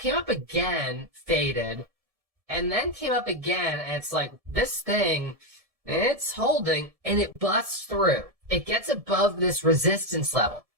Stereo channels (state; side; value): late; left; 1.7 ms